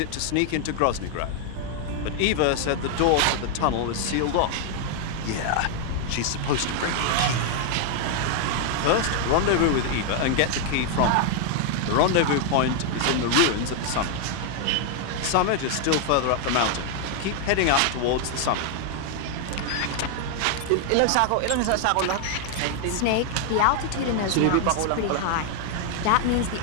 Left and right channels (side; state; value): both; different; correlation 0.00